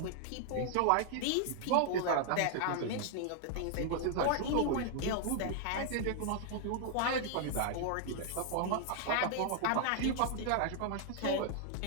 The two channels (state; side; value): different; both; correlation 0.00